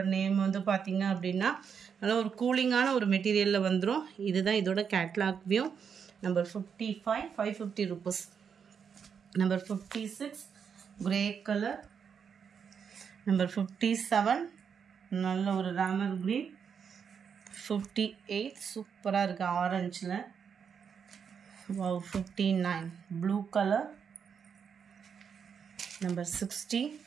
நேம் வந்து பார்த்தீங்க அப்படின்னா நல்லா ஒரு கூலிங்கான ஒரு மெட்டீரியலில் வந்துடும். இதுதான் இதோட catalogue view. Number 55 550 rupees. Number 56 grey colour. Number 57 நல்ல ஒரு ராமர் கிரீன். 58 சூப்பராக இருக்குது ஆரஞ்சில். 59 ப்ளூ கலர். நம்பர் 60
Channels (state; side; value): quieter; left; 6.9 dB